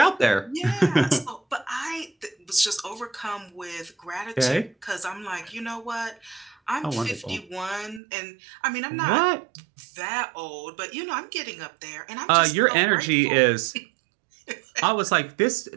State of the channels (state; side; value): drops out; left; at 8.0 s